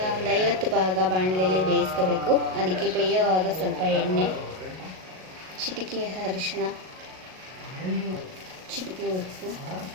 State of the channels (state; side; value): late; left; 38 ms